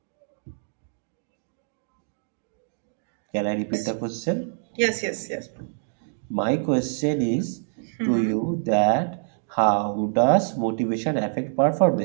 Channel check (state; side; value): silent; left; digital silence